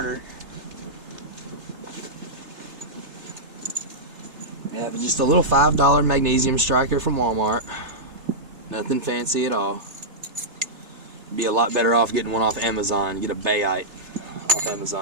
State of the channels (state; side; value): late; left; 3.3 ms